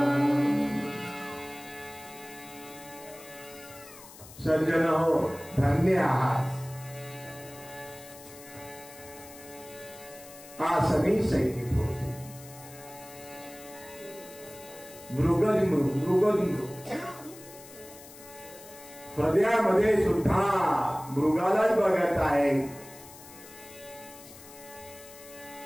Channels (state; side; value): noise; left; hiss, 18 dB below the sound